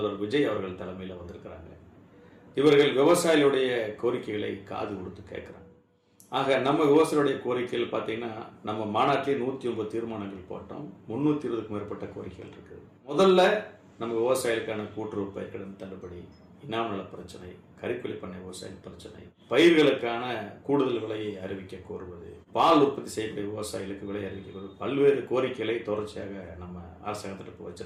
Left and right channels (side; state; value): both; identical; correlation 1.00